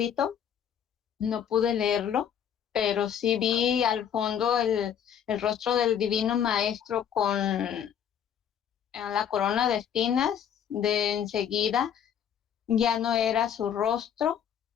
No pude leerlo, pero sí vi al fondo el rostro del Divino Maestro con la corona de espinas. De enseguida ya no era su rostro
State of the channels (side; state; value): right; quieter; 8.8 dB